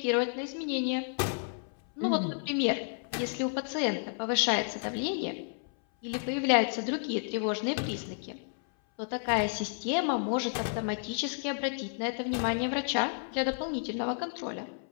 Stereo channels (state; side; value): silent; right; 57 dB below the other